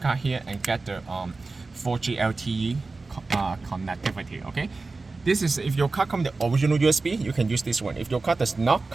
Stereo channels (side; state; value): left; quieter; 3.7 dB